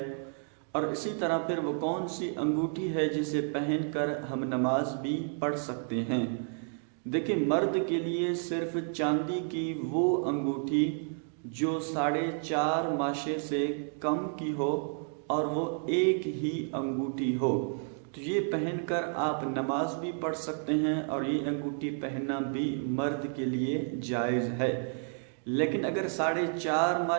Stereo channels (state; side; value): silent; left; 57 dB below the other